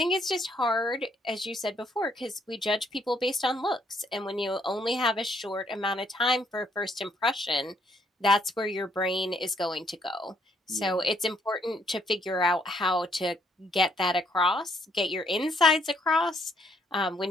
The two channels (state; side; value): normal; both; correlation 0.70